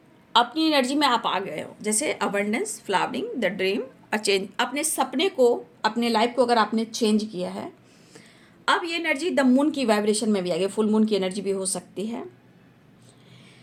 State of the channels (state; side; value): identical; both; correlation 1.00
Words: अपनी एनर्जी में आप आ गए हो, जैसे abundance, flowering, the dream, a change, अपने सपने को, अपने लाइफ को अगर आपने चेंज किया है, अब ये एनर्जी द मून की वाइब्रेशन में भी आ गई, फुल मून की एनर्जी भी हो सकती है।